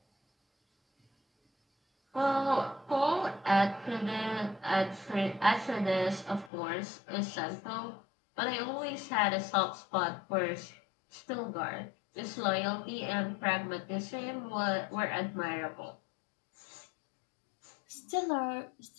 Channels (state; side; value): drops out; right; at 6.5 s